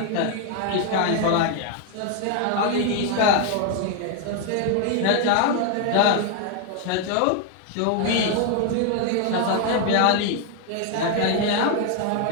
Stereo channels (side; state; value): both; different; correlation 0.00